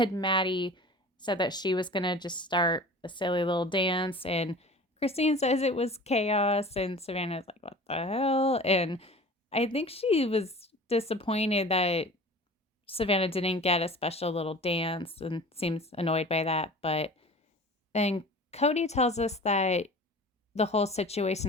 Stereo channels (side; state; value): both; normal; correlation 0.40